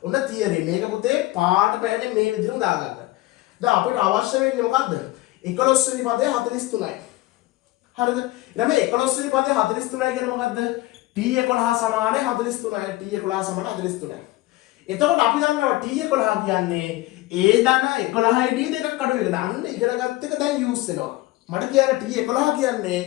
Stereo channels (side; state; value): right; quieter; 18.5 dB